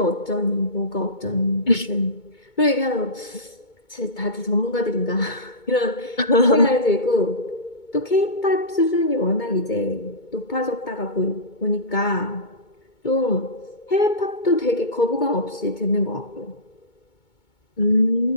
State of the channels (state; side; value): late; right; 2.2 ms